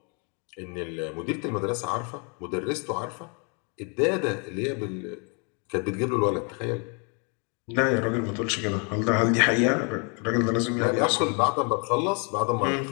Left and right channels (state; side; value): quieter; right; 36.0 dB